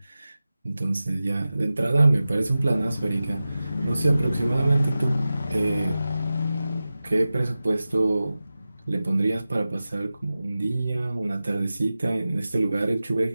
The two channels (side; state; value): both; inverted; correlation -0.95